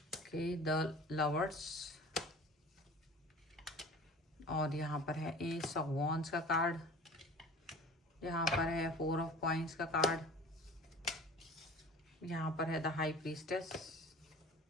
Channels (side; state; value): both; normal; correlation 0.42